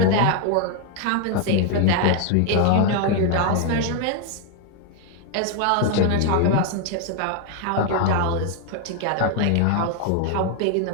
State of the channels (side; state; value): both; different; correlation 0.00